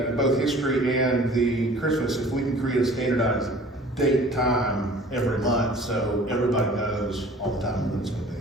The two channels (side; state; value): both; normal; correlation 0.47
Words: both history and the Christmas, if we can create a standardized date, time every month, so everybody knows all the time when it's gonna be.